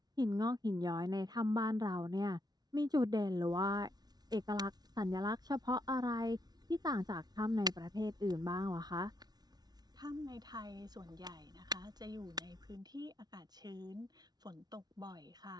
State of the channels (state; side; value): late; left; 0.19 ms